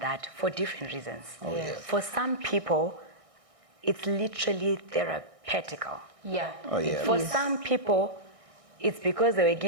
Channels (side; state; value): left; late; 1.6 ms